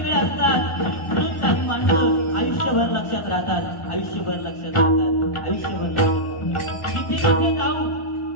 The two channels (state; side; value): late; right; 1.4 ms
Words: असतात म्हणून काही माणसं आयुष्यभर लक्षात राहतात, आयुष्यभर लक्षात राहतात, आयुष्यभर जिथे जिथे जाऊ